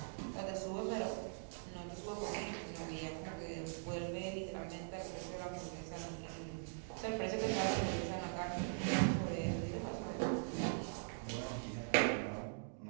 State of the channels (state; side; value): silent; left; digital silence